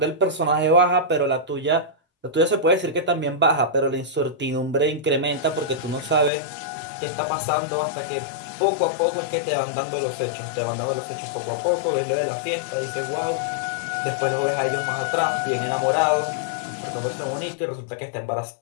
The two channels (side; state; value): right; drops out; at 6.3 s